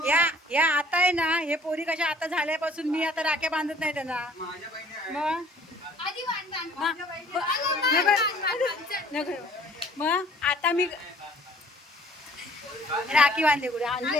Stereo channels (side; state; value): both; normal; correlation 0.54